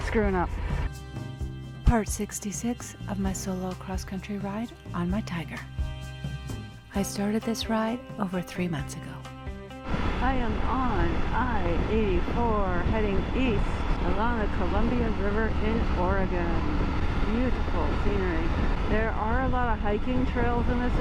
screwing up. Part 66 of my solo cross-country ride on my Tiger. I started this ride over 3 months ago. I am on I-84 heading east along the Columbia River in Oregon. Beautiful scenery. There are a lot of hiking trails in this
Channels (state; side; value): identical; both; correlation 1.00